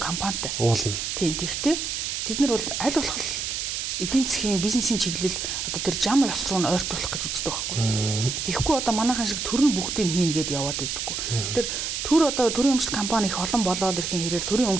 компанитай. Уулна. Тийм. Тэгтээ тэд нар бол аль болох эдийн засгийн бизнесийн чиглэл одоо тэр зам ёс руу ойртуулах гэж үздэг байхгүй. Тэгэхгүй одоо манайхан шиг төр нь бүгдийг хийнэ гэдээ яваад байдаггүй. Тэр төр одоо төрийн өмчт компани их олон болоод ирэхин хэрээр төрийн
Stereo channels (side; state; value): right; noise; hiss, 3 dB below the sound